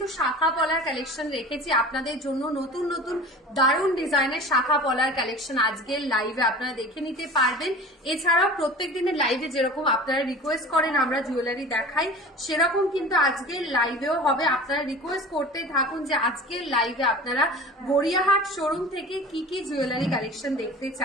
শাখা পলার কালেকশন রেখেছি আপনাদের জন্য। নতুন নতুন দারুণ ডিজাইনের শাখা পলার কালেকশন আজকের লাইভে আপনারা দেখে নিতে পারবেন। এছাড়াও প্রত্যেক দিনের লাইভে যেরকম আপনারা রিকোয়েস্ট করেন আমরা জুয়েলারি দেখাই, সেরকম কিন্তু আজকের লাইভেও হবে। আপনারা রিকোয়েস্ট করতে থাকুন যে আজকের লাইভে আপনারা গড়িয়াহাট শোরুম থেকে কি কি জুয়েলারি কালেকশন দেখতে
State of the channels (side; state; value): both; normal; correlation 0.38